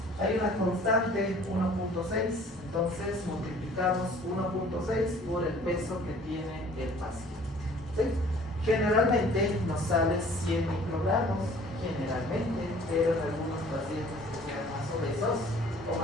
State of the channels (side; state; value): both; normal; correlation 0.52